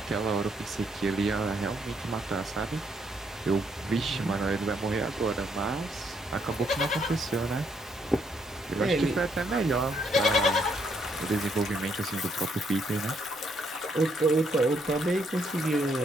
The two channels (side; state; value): both; normal; correlation 0.72